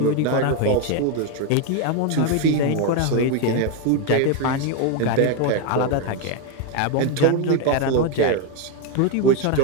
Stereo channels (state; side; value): different; both; correlation 0.02